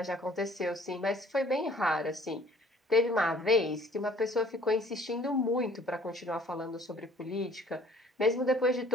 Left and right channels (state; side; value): normal; both; correlation 0.55